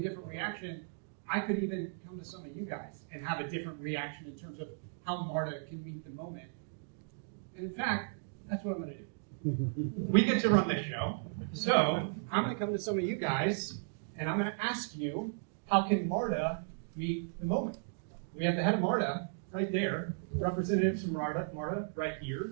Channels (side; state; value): left; silent; digital silence